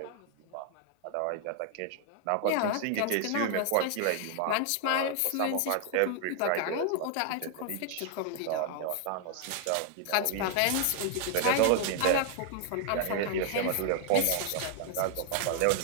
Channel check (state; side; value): different; both; correlation 0.00